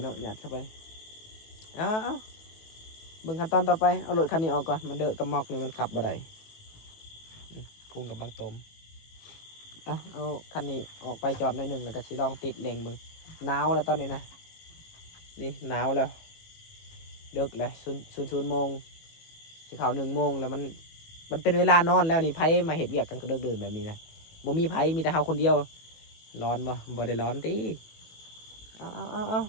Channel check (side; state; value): right; late; 18 ms